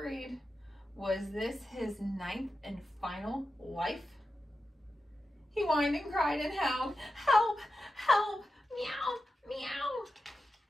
Was this his 9th and final life? He whined and cried and howled, "Help! Help! Meow! Meow!"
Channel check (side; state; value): both; normal; correlation 0.91